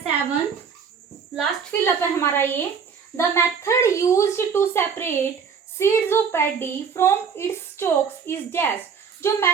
लास्ट फिलअप है हमारा ये, the method used to separate seeds of paddy from its stalks is dash. जो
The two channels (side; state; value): left; quieter; 6.3 dB